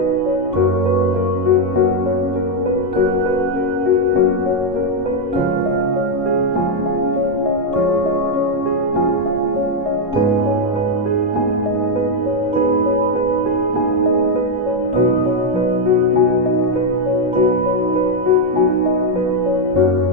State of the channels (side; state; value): both; normal; correlation 0.02